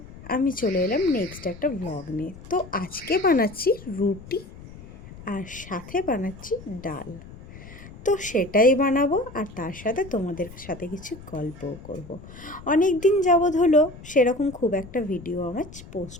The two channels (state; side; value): noise; left; rumble, 17 dB below the sound